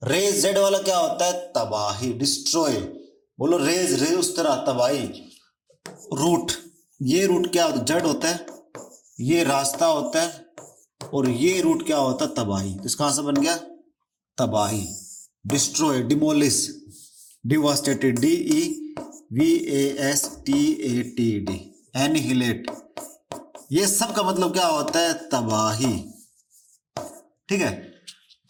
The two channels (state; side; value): identical; both; correlation 1.00